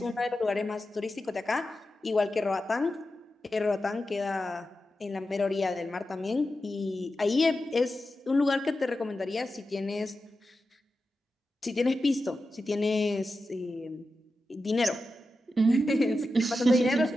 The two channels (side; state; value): both; normal; correlation 0.91